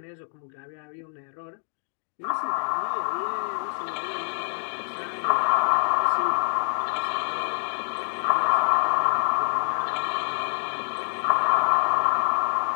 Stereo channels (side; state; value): right; silent; digital silence